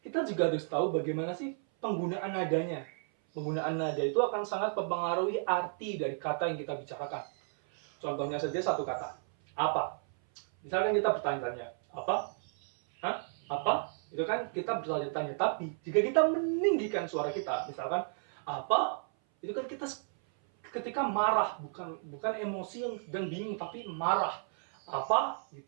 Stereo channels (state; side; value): silent; left; 56 dB below the other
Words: juga harus tahu bagaimana sih penggunaan nadanya. Penggunaan nada itu akan sangat mempengaruhi arti dari kata yang kita bicarakan. Contohnya saja satu kata, apa. Misalkan kita bertanya-tanya, apa? Hah? Apa? Itu kan kita bertanya-tanya, tapi jika kita meninggikan suara kita, misalkan apa, itu kan kita ketika marah, bukan emosi yang sedang bingung, tapi marah, apa